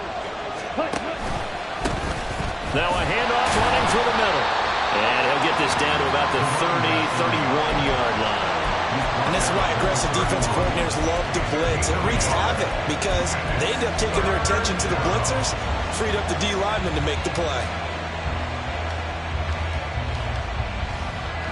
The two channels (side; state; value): both; identical; correlation 1.00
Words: Now a handoff running through the middle. And he'll get this down to about the 30, 31-yard line. And this is why aggressive defense coordinators love to blitz. It wreaks havoc because they end up taking their attention to the blitzers, freed up the D lineman to make the play.